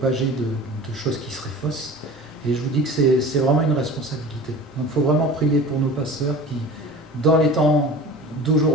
de choses qui seraient fausses. Et je vous dis que c'est vraiment une responsabilité. Donc il faut vraiment prier pour nos pasteurs qui, dans les temps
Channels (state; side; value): normal; both; correlation 0.38